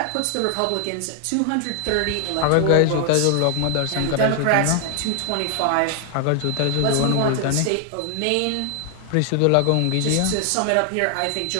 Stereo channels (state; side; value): different; both; correlation 0.00